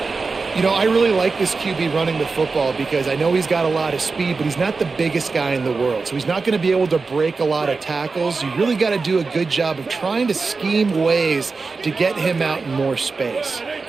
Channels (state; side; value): quieter; left; 4.3 dB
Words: You know, I really like this QB running the football because I know he's got a lot of speed, but he's not the biggest guy in the world. So he's not going to be able to break a lot of tackles. You really got to do a good job of trying to scheme ways to get him out in more space.